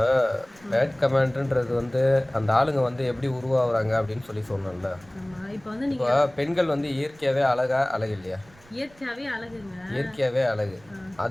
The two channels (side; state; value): right; noise; rumble, 27 dB below the sound